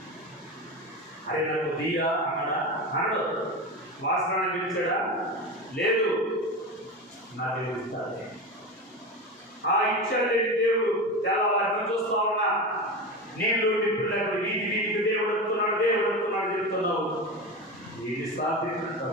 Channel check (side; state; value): both; normal; correlation 0.23